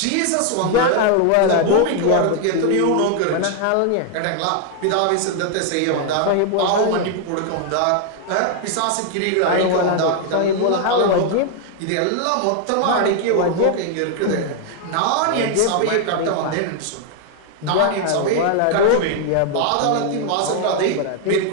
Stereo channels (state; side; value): different; both; correlation 0.00